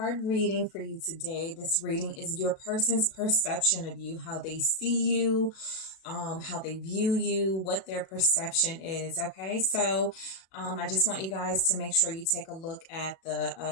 reading for you today. This reading is your person's perception of you, how they see you, how they view you, what their perception is. Okay, so I just want you guys to make sure you take a look at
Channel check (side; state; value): right; late; 37 ms